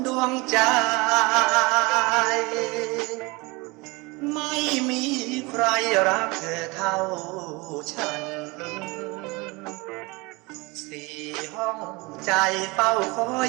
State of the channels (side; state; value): left; quieter; 25.3 dB